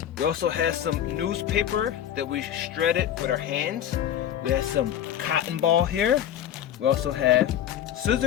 We also have some newspaper that we shredded with our hands. We have some cotton ball here. We also have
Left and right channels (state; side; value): quieter; right; 10.5 dB